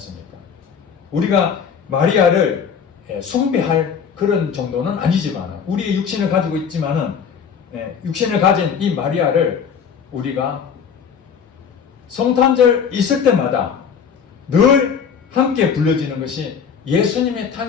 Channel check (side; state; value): right; quieter; 6.9 dB